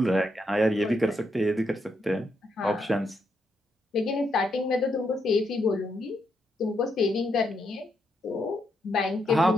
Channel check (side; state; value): both; normal; correlation 0.79